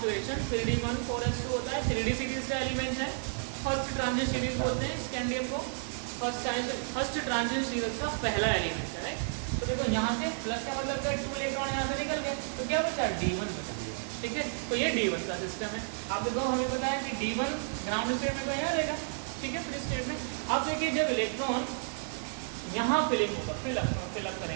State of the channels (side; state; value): left; silent; digital silence